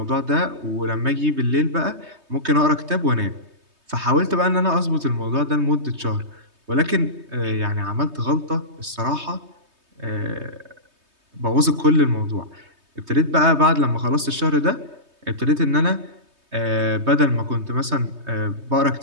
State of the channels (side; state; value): left; late; 3.2 ms